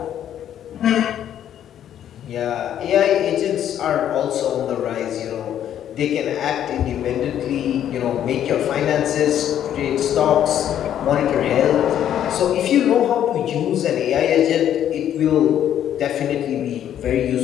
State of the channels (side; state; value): right; quieter; 10.4 dB